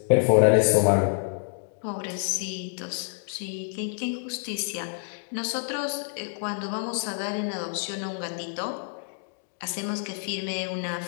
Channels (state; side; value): silent; right; digital silence